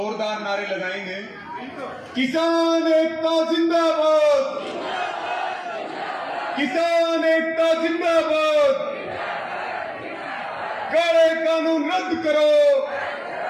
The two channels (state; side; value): identical; both; correlation 1.00